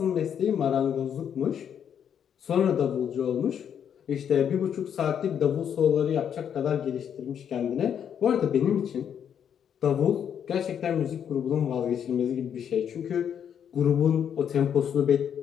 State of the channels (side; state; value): right; quieter; 8.5 dB